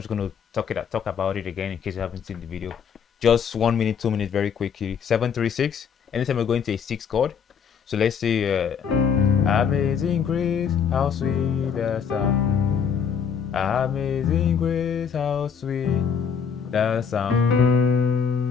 just going to talk about it again in case you haven't seen the video. Just 1 minute, 2 minutes, very quickly. 7 3 6. Anytime we're going to a 6 chord. So let's say amazing grace, how sweet the sound. Amazing grace, how sweet the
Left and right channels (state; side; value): quieter; right; 6.9 dB